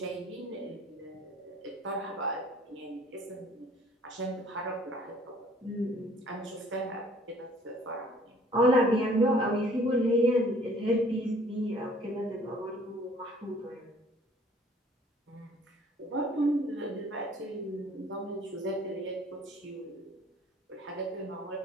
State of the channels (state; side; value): normal; both; correlation 0.55